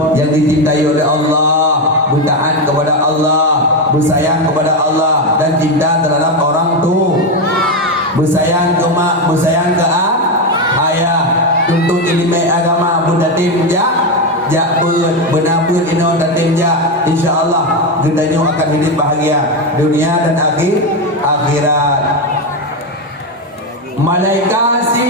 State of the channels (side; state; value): both; normal; correlation 0.10